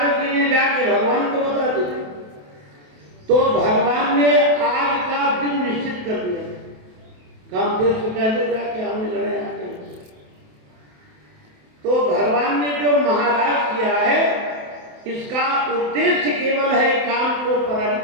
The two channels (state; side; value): late; left; 27 ms